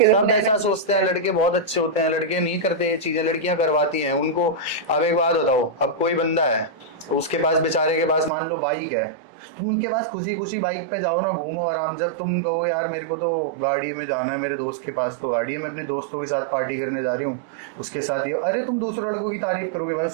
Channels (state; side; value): drops out; left; at 8.3 s